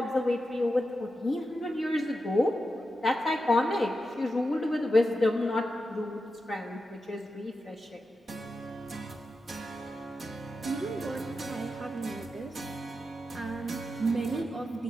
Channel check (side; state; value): both; normal; correlation 0.89